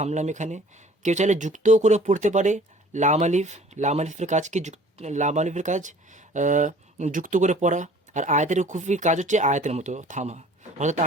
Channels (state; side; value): normal; both; correlation 0.50